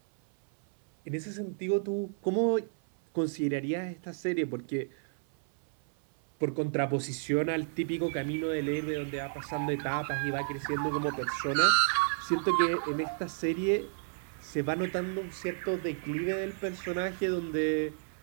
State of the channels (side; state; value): left; silent; 57 dB below the other